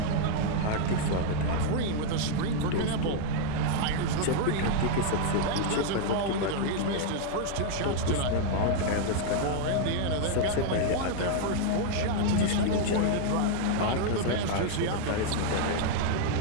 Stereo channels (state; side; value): different; both; correlation 0.00